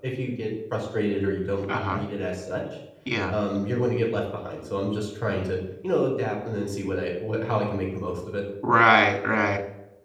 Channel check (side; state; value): both; identical; correlation 1.00